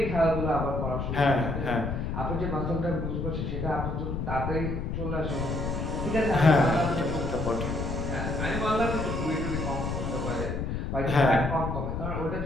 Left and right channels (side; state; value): left; noise; rumble, 3 dB below the sound